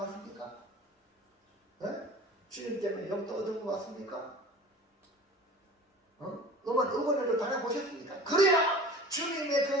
주님 때문에 욕도 얻어먹었습니까? 응원을 당해보셨습니까? 그래야 주님의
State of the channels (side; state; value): both; normal; correlation 0.39